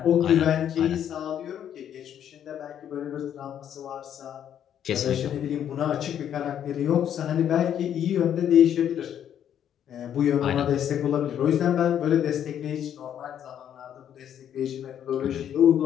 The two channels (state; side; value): quieter; right; 9.7 dB